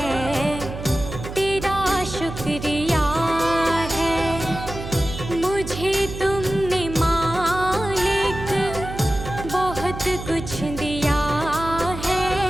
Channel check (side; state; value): right; noise; hum, 9 dB below the sound